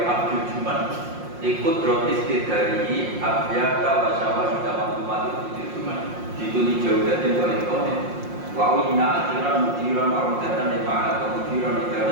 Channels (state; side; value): late; left; 5.6 ms